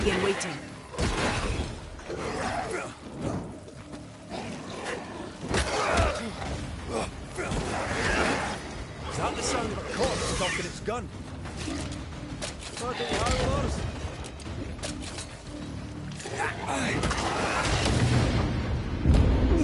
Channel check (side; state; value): both; identical; correlation 1.00